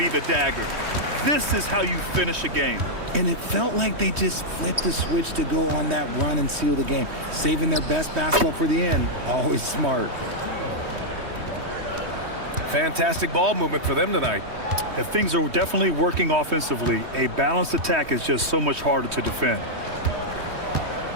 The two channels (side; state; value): left; late; 3.2 ms